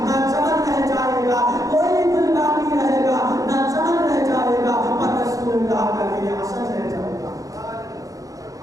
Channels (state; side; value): late; left; 0.17 ms